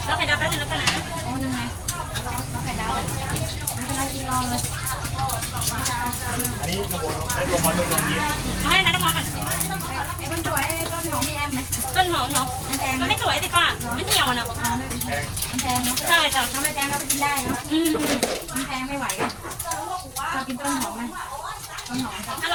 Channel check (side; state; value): both; identical; correlation 1.00